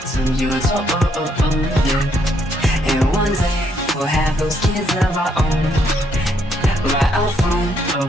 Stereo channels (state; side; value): normal; both; correlation 0.72